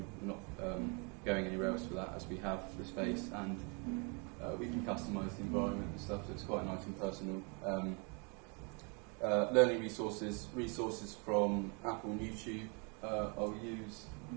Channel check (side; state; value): left; quieter; 34.6 dB